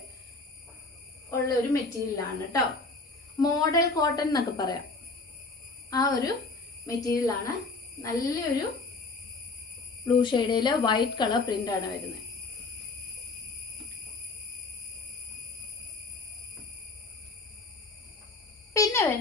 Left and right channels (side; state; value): right; quieter; 3.7 dB